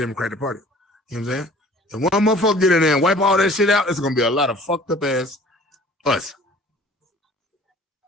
Party. You know what I'm saying? And one motherfucker get in there and wipe all that shit out, it's gonna be a lot of fucked up ass us.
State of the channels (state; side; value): normal; both; correlation 0.49